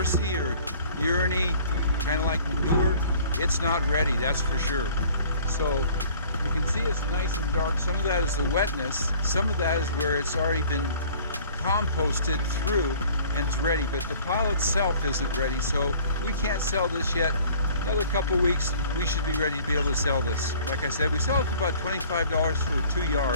or urine-y, kind of like manure, it's not ready, that's for sure. So you can see it's nice and dark. Some of that is the wetness. Some of that is where it's already been composted through and it's ready, but the pile itself isn't ready, so we can't sell this yet. Another couple weeks, we should be ready to be able to sell this. Like I said, we sell it for about $25 for 2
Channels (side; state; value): both; inverted; correlation -0.51